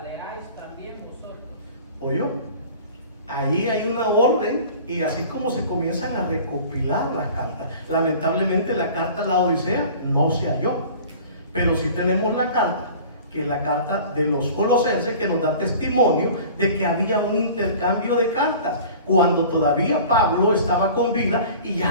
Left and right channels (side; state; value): both; inverted; correlation -0.43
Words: también vosotros. ¿Oyó? Ahí hay una orden, y así como se comienzan a recopilar las cartas. Lamentablemente la carta de la Odisea no se halló, pero sí tenemos la carta, que es la carta de los Colosenses, que nos da testimonio de que había un intercambio de cartas cuando todavía Pablo estaba con vida, y